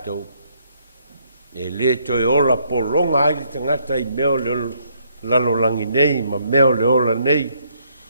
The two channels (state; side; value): inverted; both; correlation -0.70